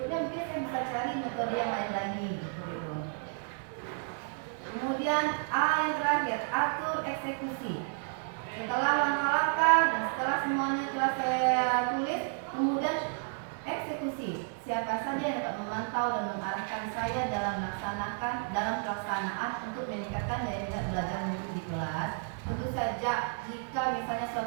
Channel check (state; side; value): silent; left; 57 dB below the other